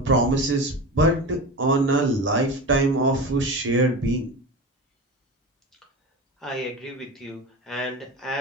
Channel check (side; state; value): both; normal; correlation 0.27